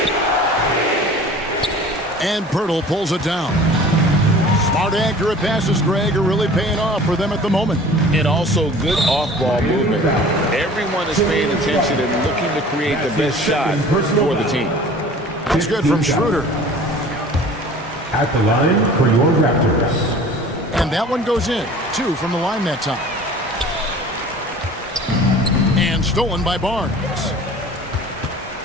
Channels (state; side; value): normal; both; correlation 0.45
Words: And Poeltl pulls it down. Smart, accurate passes, Greg, are really paying off for them at the moment. And also good off-ball movement. Everyone is paying attention and looking to create the best shot for the team. That's good from Schroeder. At the line for your Raptors. And that one goes in. 2 from the line that time. And stolen by Barnes.